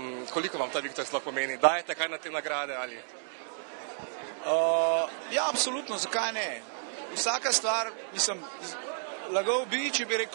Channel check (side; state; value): left; silent; digital silence